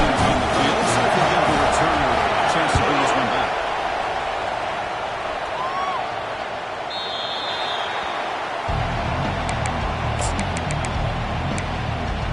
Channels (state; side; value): identical; both; correlation 1.00